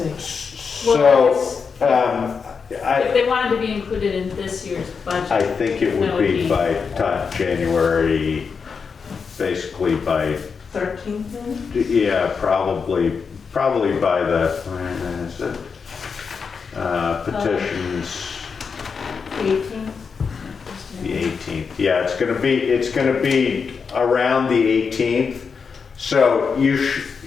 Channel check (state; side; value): quieter; right; 5.6 dB